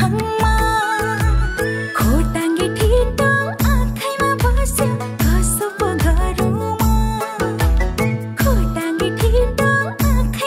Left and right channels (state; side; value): identical; both; correlation 1.00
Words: खोटाङ्गे ठिटो आँखैमा बस्यो कसो पो गरौँ खोटाङ्गे ठिटो